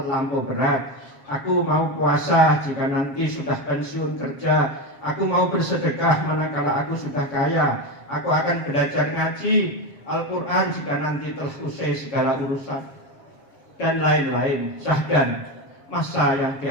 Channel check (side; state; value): right; late; 7.3 ms